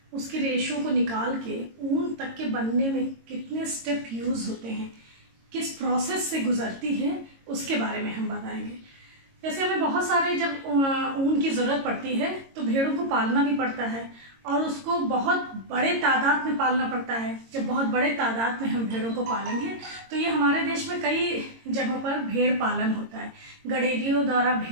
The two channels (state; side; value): late; left; 22 ms